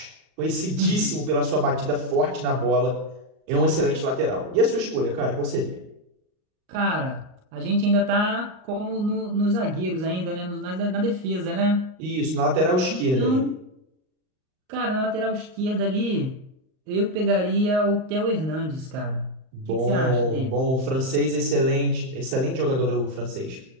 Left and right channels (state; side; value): late; left; 38 ms